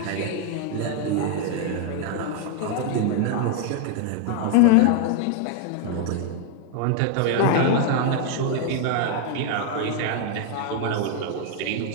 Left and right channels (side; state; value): both; different; correlation 0.00